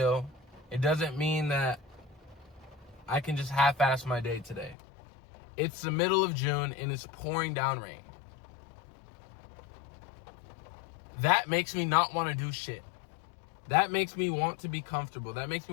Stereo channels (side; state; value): right; drops out; at 4.8 s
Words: It doesn't mean that I can just half-ass my day today. It's the middle of June and it's pouring down rain. That makes me not want to do shit. That makes me want to be comfortable. That makes